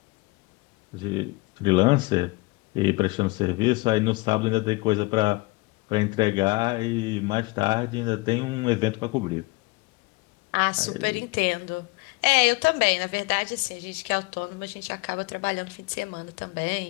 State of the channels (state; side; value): quieter; right; 24.1 dB